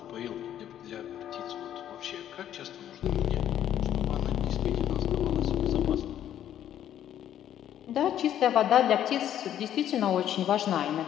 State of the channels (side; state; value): right; quieter; 10.9 dB